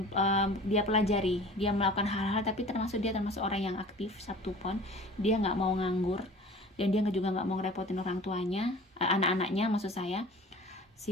dia pelajari, dia melakukan hal-hal, tapi dia termasuk orang yang aktif Sabtu Pon. Dia nggak mau nganggur dan dia juga nggak mau ngerepotin orang tuanya, anak-anaknya maksud saya,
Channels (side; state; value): both; normal; correlation 0.43